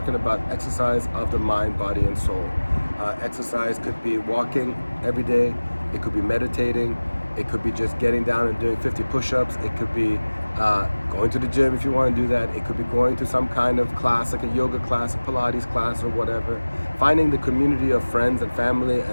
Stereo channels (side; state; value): both; inverted; correlation -1.00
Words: about exercise of the mind, body, and soul. Exercise could be walking every day. It could be meditating. It could be just getting down and doing 50 push-ups. It could be going to the gym if you want to do that. It could be going to some kind of class, like a yoga class, a Pilates class, or whatever. Finding the community of friends and family